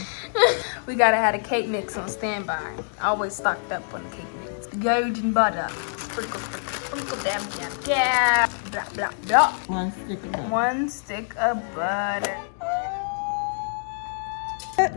we gotta have a cake mix on standby. Always stocked up on the cake mix. Golden butter. Sprinkle, sprinkle, sprinkle, dab, dab, dab. Blah, blah, blah. One stick of butter.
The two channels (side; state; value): right; silent; digital silence